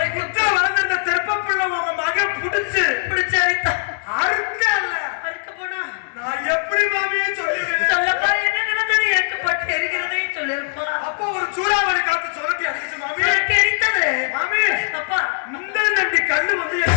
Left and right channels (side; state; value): right; silent; digital silence